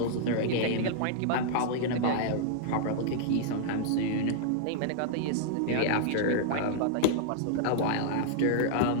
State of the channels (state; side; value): different; both; correlation -0.01